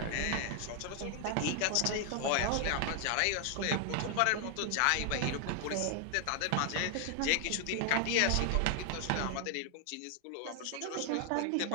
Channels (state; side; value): different; both; correlation 0.00